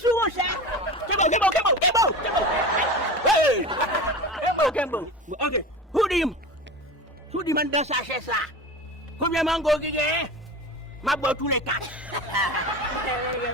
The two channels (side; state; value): both; normal; correlation 0.30